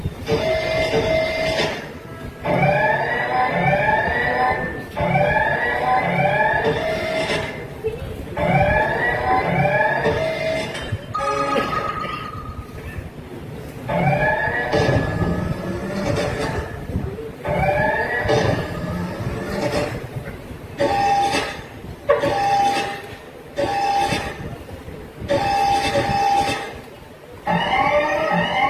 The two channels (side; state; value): both; identical; correlation 1.00